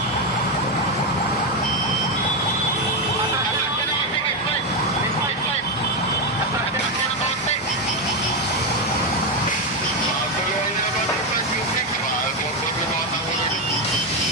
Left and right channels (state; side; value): normal; both; correlation 0.08